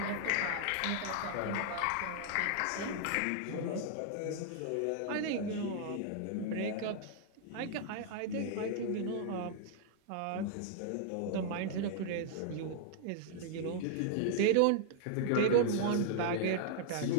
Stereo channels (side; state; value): both; different; correlation -0.01